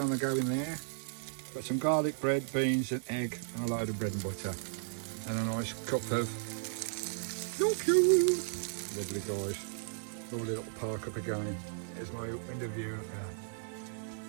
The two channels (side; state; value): left; silent; digital silence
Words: the go in there. Got some garlic bread, beans and egg and a load of bread and butter. And a nice cup of lovely guys. Lovely little park up again. Here's my window view.